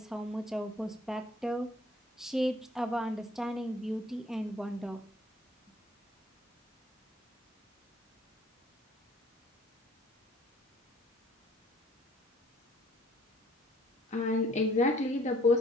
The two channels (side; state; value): both; normal; correlation 0.58